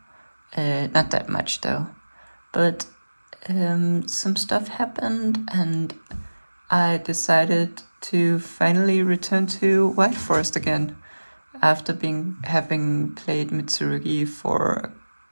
Not that much though, but some stuff happened and I decided to finally return to White Forest again after having played Mitsurugi for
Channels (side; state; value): both; inverted; correlation -1.00